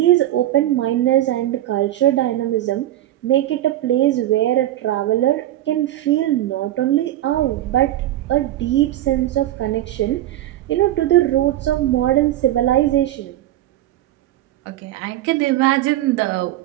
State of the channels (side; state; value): left; quieter; 14.0 dB